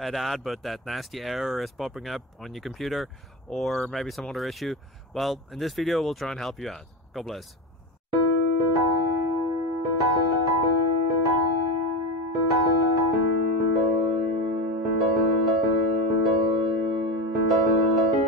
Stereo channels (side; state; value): both; normal; correlation 0.18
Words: out, but that nasty error is popping up on your computer, or maybe some other issue. Well, in this video we'll try and help you out. God bless.